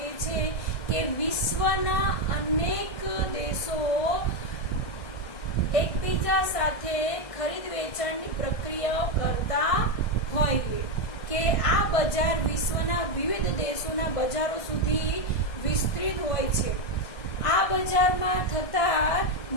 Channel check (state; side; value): late; right; 1.6 ms